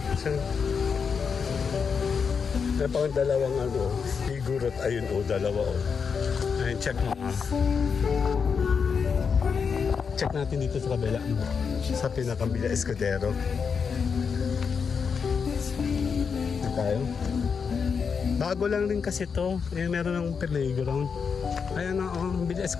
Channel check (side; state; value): right; quieter; 6.0 dB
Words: isang... Meron pang dalawang ano, figure at ayun o, dalawa o. Ayun, check mo. Check natin dito sa kabila. Sa pinakang Villa Escudero. Ito tayo. Bago lang rin kasi to. Eh, meron ng playground. Ayan na, oh, Villa